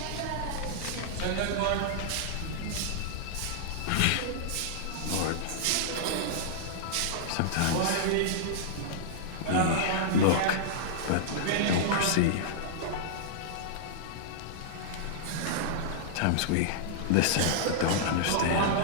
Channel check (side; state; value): both; different; correlation -0.01